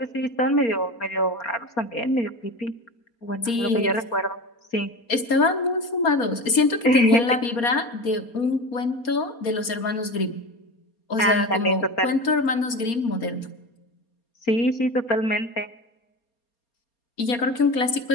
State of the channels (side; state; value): right; late; 4.3 ms